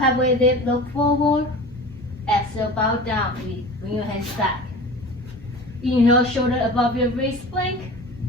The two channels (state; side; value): normal; both; correlation 0.36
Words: dip, look forward. Exhale, bow down. Bring your hands back. Inhale, shoulder above your wrist plank.